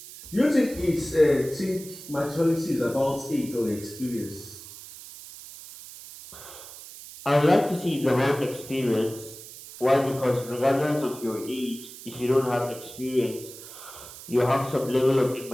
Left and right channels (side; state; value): right; noise; hiss, 15 dB below the sound